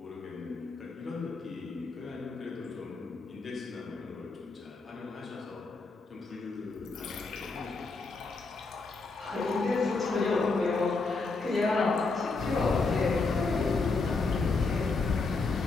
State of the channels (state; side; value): quieter; right; 3.9 dB